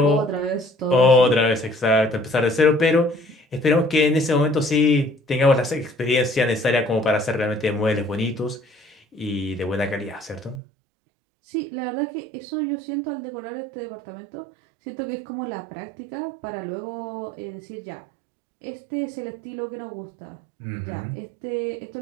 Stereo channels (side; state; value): left; drops out; at 10.6 s